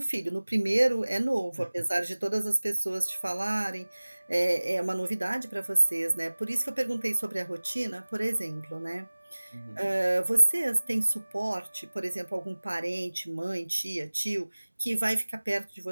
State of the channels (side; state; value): both; inverted; correlation -1.00